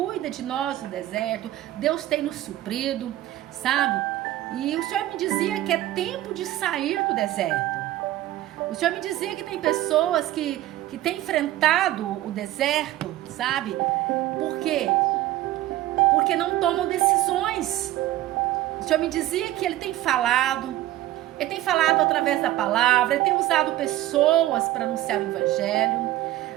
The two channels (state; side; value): quieter; left; 14.9 dB